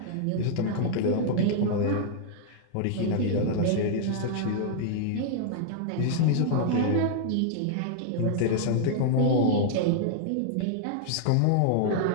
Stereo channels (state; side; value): different; both; correlation -0.01